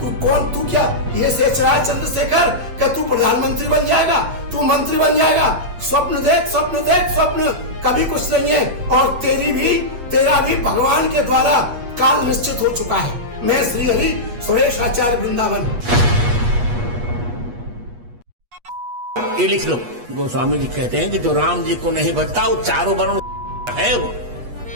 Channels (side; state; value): left; late; 8.3 ms